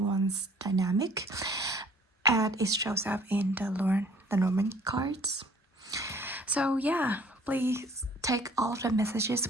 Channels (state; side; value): normal; both; correlation 0.55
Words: dynamic as it shows up in the Lenormand cards. So yeah, please take all of the